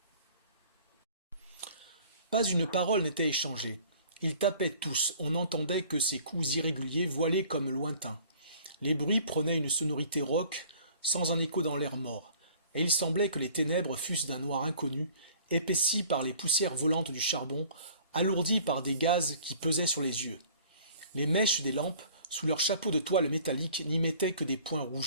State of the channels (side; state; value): both; inverted; correlation -0.51